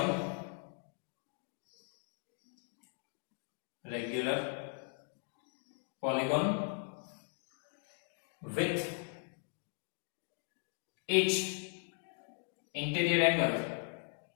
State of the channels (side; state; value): right; silent; 52 dB below the other